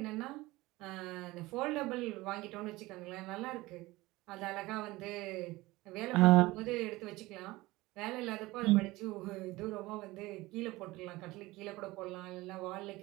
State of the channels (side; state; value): left; quieter; 19.9 dB